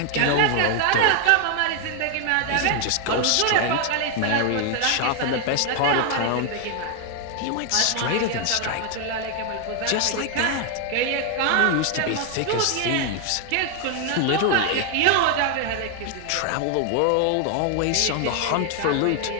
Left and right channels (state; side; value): different; both; correlation 0.00